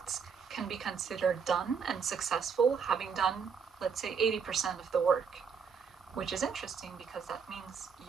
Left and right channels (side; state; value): left; quieter; 6.2 dB